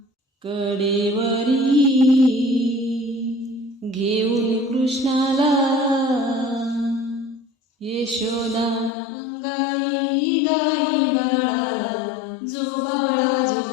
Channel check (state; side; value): drops out; right; at 8.9 s